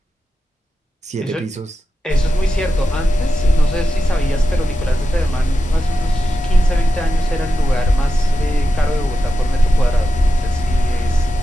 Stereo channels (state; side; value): normal; both; correlation 0.90